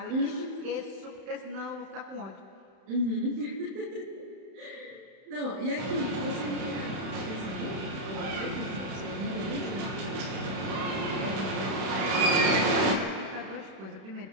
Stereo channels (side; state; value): left; late; 31 ms